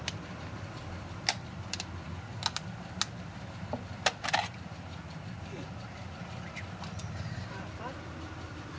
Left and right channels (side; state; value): both; identical; correlation 1.00